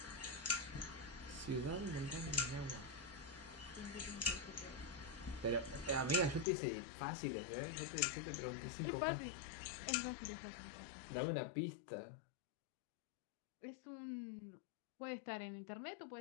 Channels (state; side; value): drops out; right; at 6.5 s